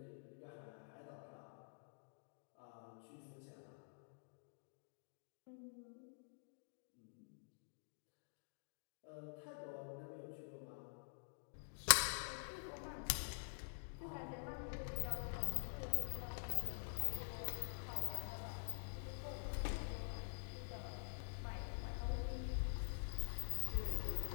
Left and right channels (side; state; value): right; silent; digital silence